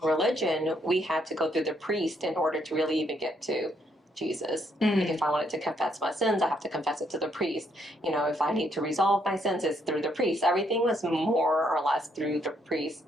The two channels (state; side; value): normal; both; correlation 0.72